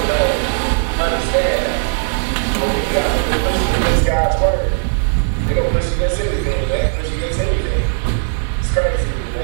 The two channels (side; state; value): left; silent; digital silence